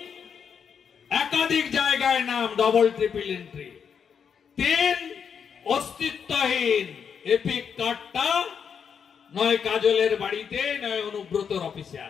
একাধিক জায়গায় নাম, ডবল ট্রিপল এন্ট্রি। 3, অস্তিত্বহীন। এপিক কার্ডটা নয় কাজলের বাড়িতে, নয় অনুব্রতর অফিসে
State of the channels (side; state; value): right; quieter; 7.0 dB